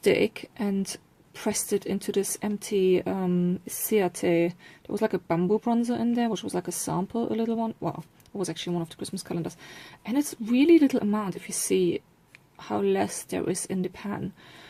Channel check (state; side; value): identical; both; correlation 1.00